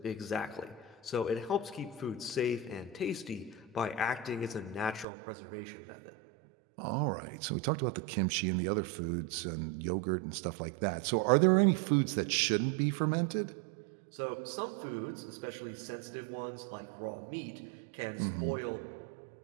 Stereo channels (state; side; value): drops out; left; at 5.1 s